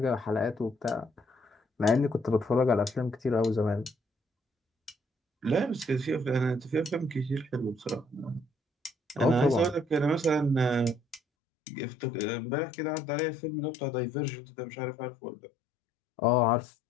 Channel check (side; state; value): right; drops out; at 11.2 s